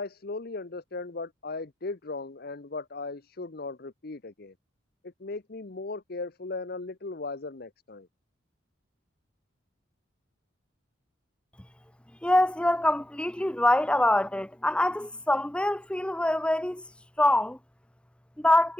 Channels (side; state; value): both; normal; correlation 0.86